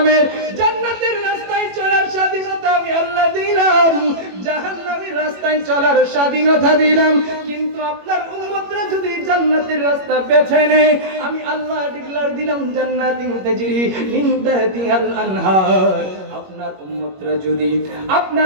জান্নাতের রাস্তায় চলার স্বাধীনতা আমি আল্লাহ দিলাম, জাহান্নামের রাস্তায় চলার স্বাধীনতা দিলাম। কিন্তু আপনার উম্মতরা যদি জান্নাতের রাস্তা বেছে নেয়, আমি আল্লাহ ডিক্লার দিলাম জান্নাতিন তাজরি মিন তাহতিহাল আনহার।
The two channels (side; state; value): left; late; 21 ms